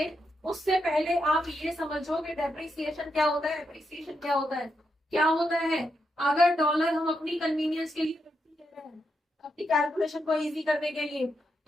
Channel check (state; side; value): normal; both; correlation 0.83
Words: उससे पहले आप ये समझो कि डेप्रिसिएशन क्या होता है, एप्रिसिएशन क्या होता है। क्या होता है, अगर डॉलर हम अपनी कन्वीनियंस के लिए ले रहे हैं, अपनी कैलकुलेशन को इजी करने के लिए,